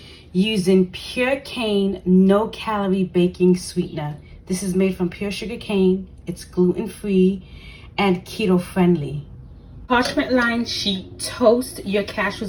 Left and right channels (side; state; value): both; identical; correlation 1.00